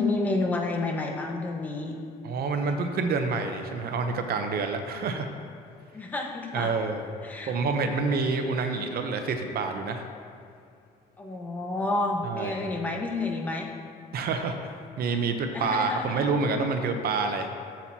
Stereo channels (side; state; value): both; normal; correlation 0.40